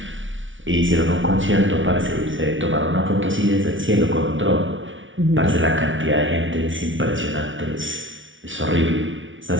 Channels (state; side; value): late; left; 0.56 ms